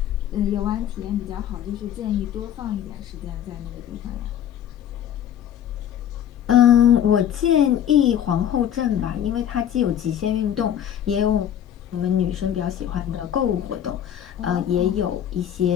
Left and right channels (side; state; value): right; quieter; 10.1 dB